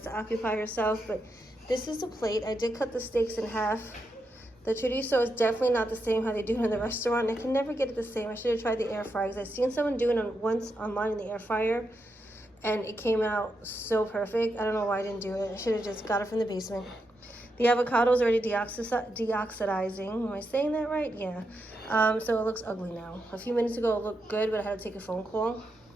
to occupy herself, but this is the plate. I did cut the steaks in half. The chorizo is definitely not the same how they do it in the restaurant. I can never get it the same. I should have tried the air fryer because I've seen someone doing it once online in the air fryer and it came out so perfect. I don't know why I didn't do it. I should have just got it from the basement. The avocado is already deoxidizing. Am I saying that right? Yeah. So it looks ugly now. A few minutes ago it looked good, but I had to take a phone call.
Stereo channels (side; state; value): both; normal; correlation 0.84